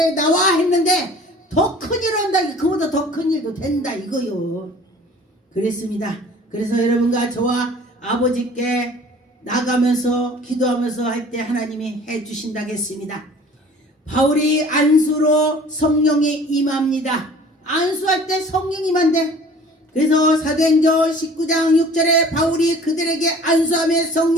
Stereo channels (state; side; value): normal; both; correlation 0.48